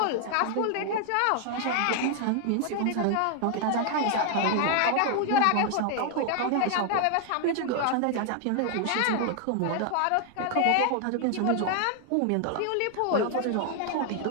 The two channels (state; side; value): different; both; correlation 0.00